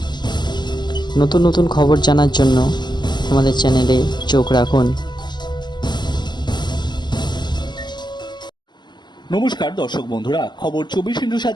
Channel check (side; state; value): right; late; 0.21 ms